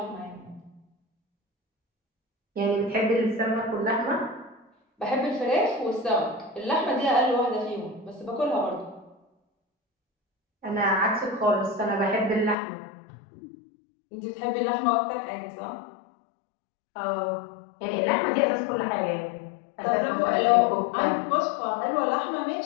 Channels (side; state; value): right; drops out; at 12.6 s